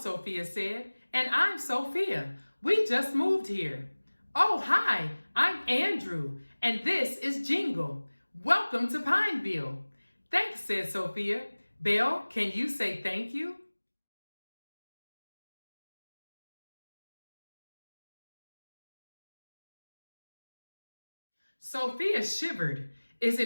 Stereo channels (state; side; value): inverted; both; correlation -1.00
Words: said, "and I'm Sophia. We just moved here." "Oh, hi, I'm Andrew, and this is Jingle. Welcome to Pineville." "Thanks," said Sophia. "Belle, can you say thank you?" Sophia shivered. "Is